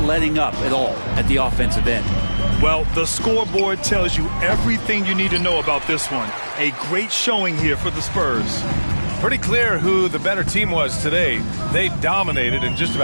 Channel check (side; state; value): both; inverted; correlation -1.00